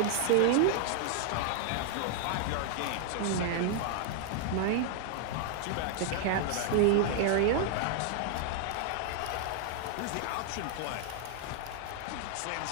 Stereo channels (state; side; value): different; both; correlation 0.00